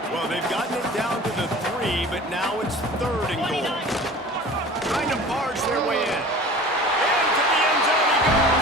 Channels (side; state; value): both; normal; correlation 0.41